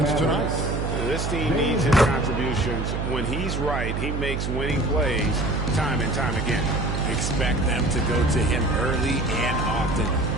tonight. This team needs his contributions. When he's right, he makes winning plays time and time again. Expect them to go to him early and often.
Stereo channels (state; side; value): noise; right; hum, 2 dB below the sound